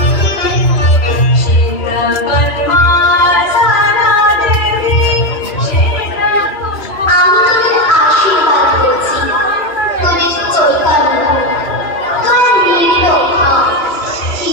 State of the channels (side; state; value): right; late; 3.0 ms